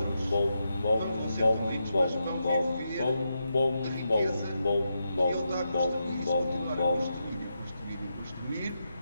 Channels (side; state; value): both; inverted; correlation -0.85